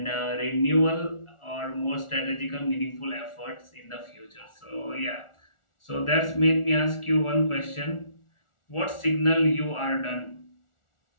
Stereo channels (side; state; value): right; late; 1.4 ms